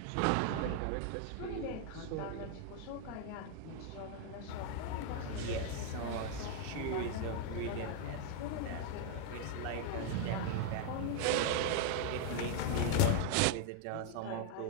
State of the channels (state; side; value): different; both; correlation 0.00